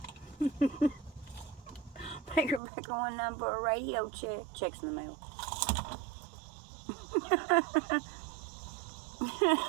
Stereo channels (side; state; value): left; drops out; at 2.6 s